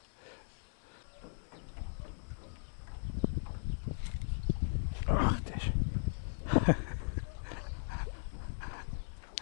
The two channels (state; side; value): silent; right; digital silence